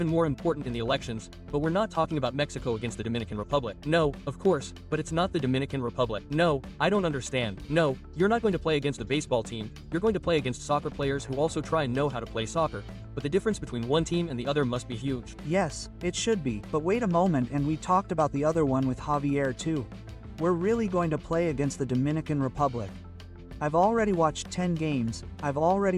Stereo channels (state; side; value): identical; both; correlation 1.00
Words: more important in the elections, but we're not talking about Mexico against the Dominican Republic. No, of course, but it's not the Dominican Republic. No, I don't understand. No, you're not going to play against a baseball team, you're going to play against soccer players who also try and know how to play soccer. But the difference between one team and the other must be huge. Yes, it should be, but wait a moment, and we talked about the other one with Javier too. We're really going to play against the Dominican Republic. I've already watched 10 games, I've